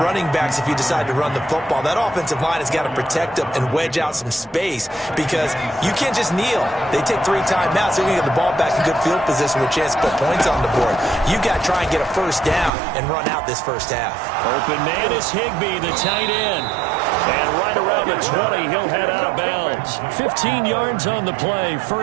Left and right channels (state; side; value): drops out; left; at 12.7 s